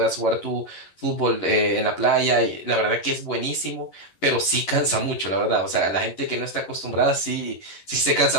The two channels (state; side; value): late; right; 11 ms